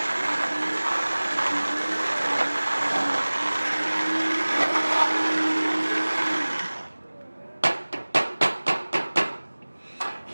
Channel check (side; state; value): both; inverted; correlation -1.00